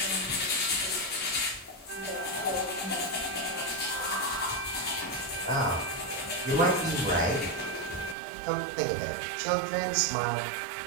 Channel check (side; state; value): left; drops out; at 8.2 s